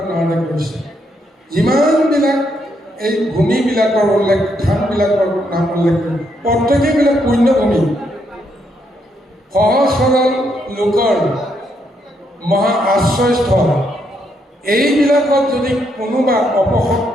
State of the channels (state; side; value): normal; both; correlation 0.76